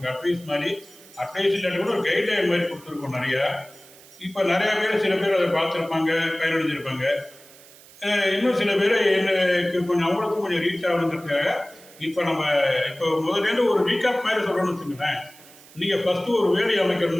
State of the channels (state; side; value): noise; right; hiss, 22 dB below the sound